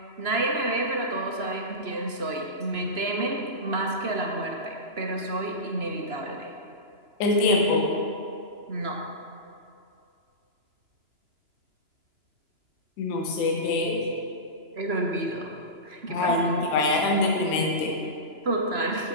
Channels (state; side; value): late; left; 2.9 ms